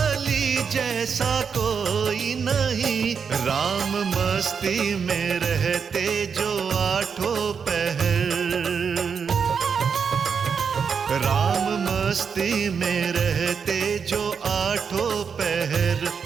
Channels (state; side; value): quieter; left; 6.3 dB